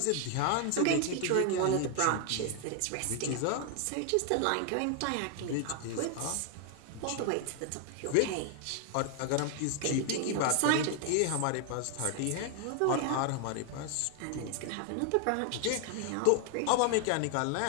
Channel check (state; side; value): different; both; correlation 0.00